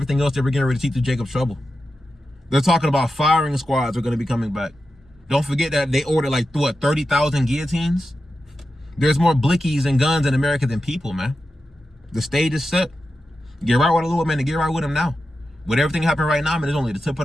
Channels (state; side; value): normal; both; correlation 0.91